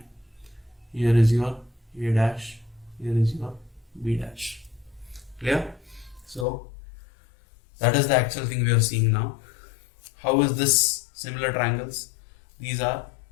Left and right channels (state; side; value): drops out; right; at 6.5 s